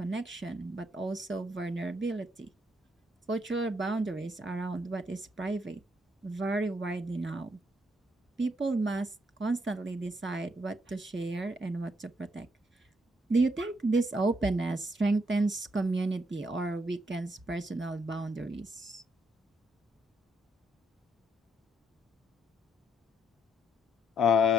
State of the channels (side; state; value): both; normal; correlation 0.75